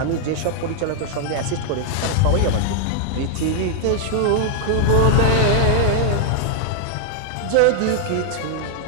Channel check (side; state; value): both; different; correlation 0.00